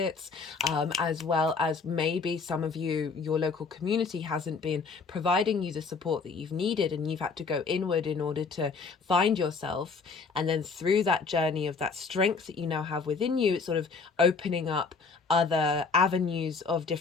as well as maybe some of you, your local community hasn't been providing you the support that you've needed, and you've had to go inward in order to find yourself. And then through that journey of that strength that you now have within you, it's sort of opening up other avenues of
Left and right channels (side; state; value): right; quieter; 4.7 dB